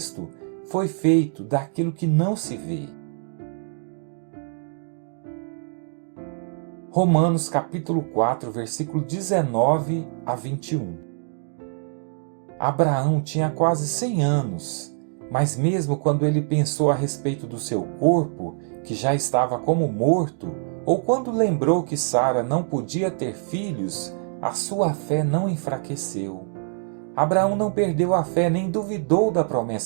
foi feito daquilo que não se vê. Romanos capítulo 4, versículo 19 a 21. Abraão tinha quase 100 anos, mas mesmo quando ele pensou a respeito do seu corpo, que já estava como morto, ou quando lembrou que Sara não podia ter filhos, a sua fé não enfraqueceu. Abraão não perdeu a fé nem duvidou da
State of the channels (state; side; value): silent; left; 57 dB below the other